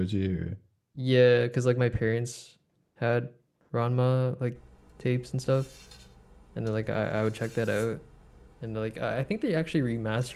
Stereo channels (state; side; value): identical; both; correlation 1.00